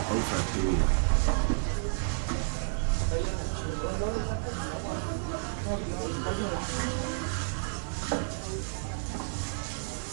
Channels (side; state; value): left; silent; digital silence